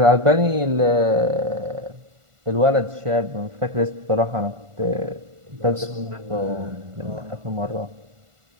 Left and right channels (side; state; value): left; late; 1.5 ms